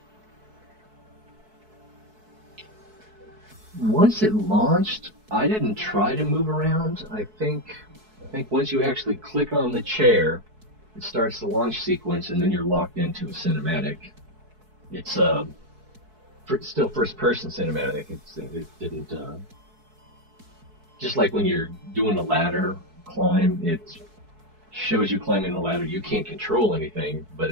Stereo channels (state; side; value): late; left; 4.6 ms